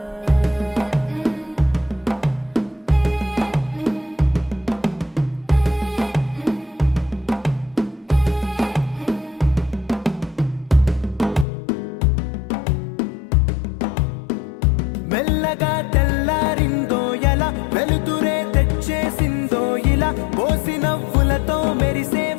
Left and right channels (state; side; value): drops out; right; at 11.5 s